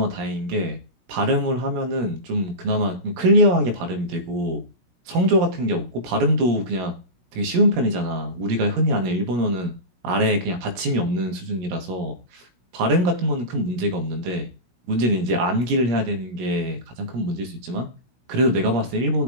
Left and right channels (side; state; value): left; late; 17 ms